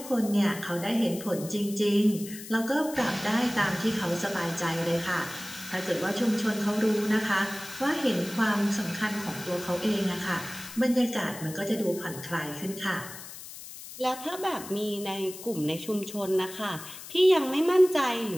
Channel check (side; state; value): left; noise; hiss, 13 dB below the sound